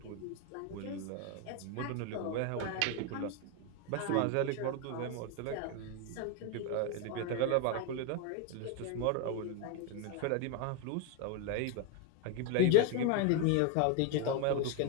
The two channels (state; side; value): different; both; correlation 0.01